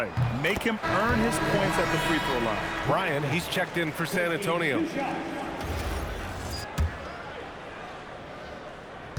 Make him earn his points at the free throw line. Brian, he's checked in for San Antonio.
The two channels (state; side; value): identical; both; correlation 1.00